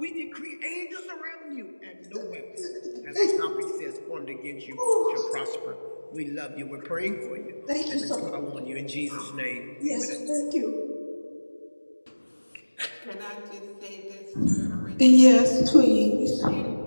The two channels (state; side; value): inverted; both; correlation -1.00